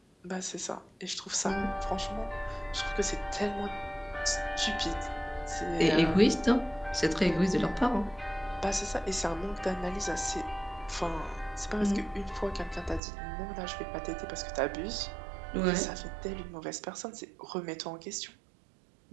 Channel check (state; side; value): drops out; left; at 13.0 s